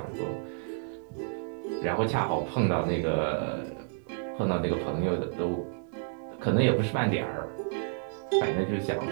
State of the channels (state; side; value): silent; left; digital silence